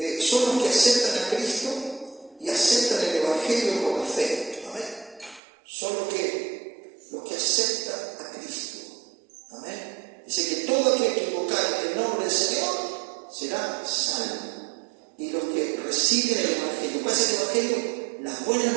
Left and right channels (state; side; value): drops out; left; at 5.4 s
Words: son los que aceptan a Cristo y aceptan el Evangelio con la fe. Amén. Son los que aceptan a Cristo. Amén. Dice que todo aquel que invocar en el nombre del Señor será salvo. Y los que reciben el Evangelio, ¿cuál es el Evangelio? Las buenas